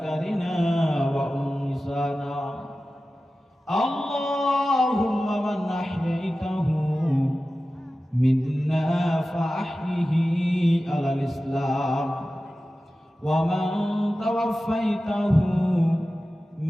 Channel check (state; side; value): normal; both; correlation 0.95